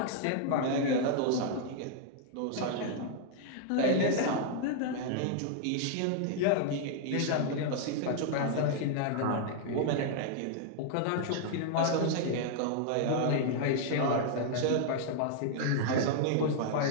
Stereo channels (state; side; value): different; both; correlation -0.01